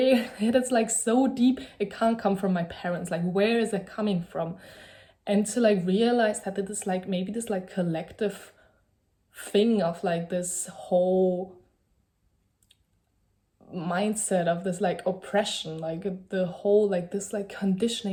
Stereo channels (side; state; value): both; identical; correlation 1.00